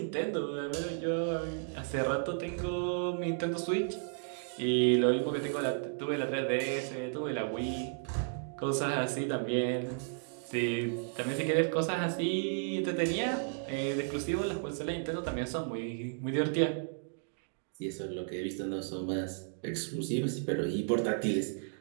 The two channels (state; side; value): silent; left; digital silence